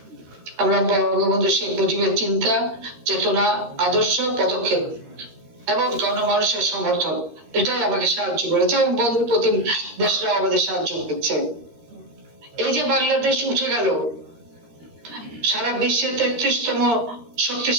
আমরা বঙ্গবন্ধু শেখ মুজিবের চিন্তা, চেতনা, আদর্শ, পদক্ষেপ এবং গণমানুষের সমর্থন, এটাই আমাকে সাহায্য করেছে এবং বন্ধু প্রতিম দেশরা আমাদের সাহায্য করছে। এই যে বাংলাদেশ উঠে গেল সারা বিশ্বের 33তম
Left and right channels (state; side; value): late; left; 13 ms